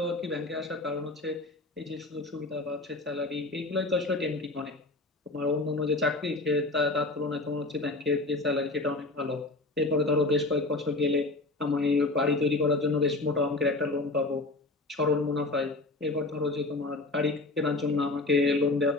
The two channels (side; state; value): right; quieter; 3.1 dB